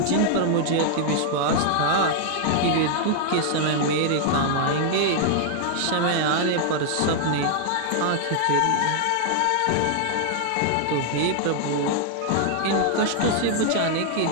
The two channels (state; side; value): different; both; correlation 0.00